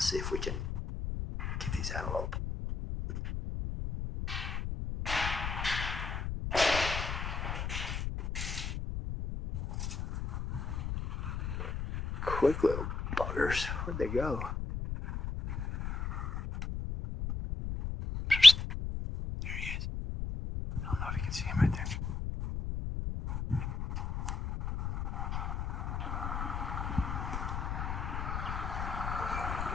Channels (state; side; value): noise; left; rumble, 4 dB below the sound